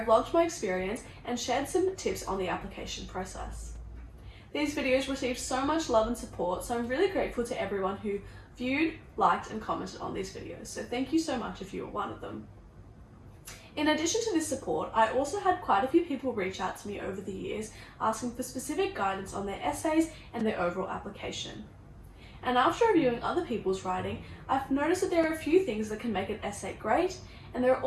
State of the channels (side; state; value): both; identical; correlation 1.00